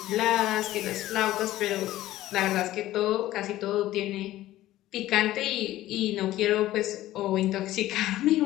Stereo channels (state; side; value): quieter; right; 15.1 dB